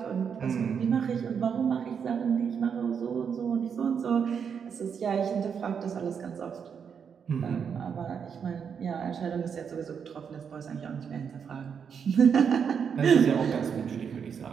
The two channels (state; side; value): quieter; left; 7.0 dB